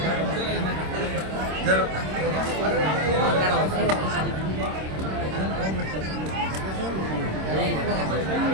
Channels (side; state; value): left; late; 26 ms